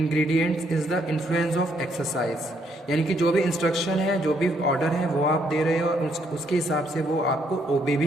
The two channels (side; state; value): both; normal; correlation 0.72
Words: is the influence of exercise, यानी कि जो भी इंस्ट्रक्शन है, जो भी ऑर्डर है वो आप दे रहे हो, उसके हिसाब से वो आपको ओबे